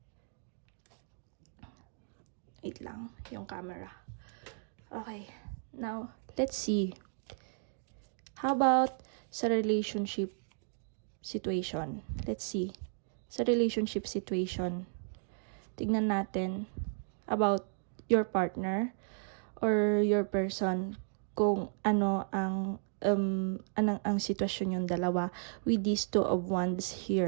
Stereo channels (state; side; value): silent; left; digital silence